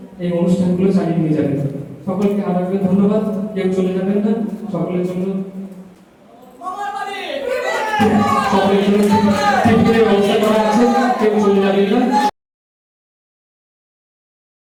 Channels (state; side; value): identical; both; correlation 1.00